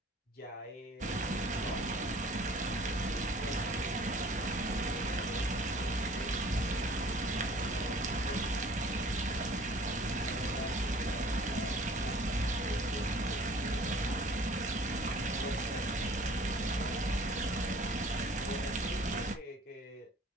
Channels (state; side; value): normal; both; correlation 0.51